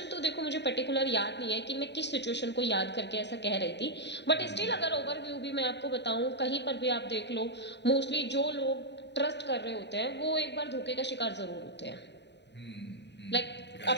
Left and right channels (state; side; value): late; right; 0.50 ms